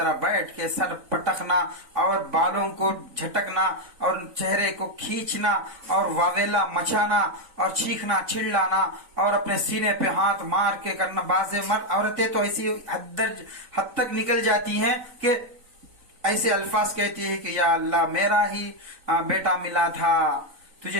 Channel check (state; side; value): late; left; 3.9 ms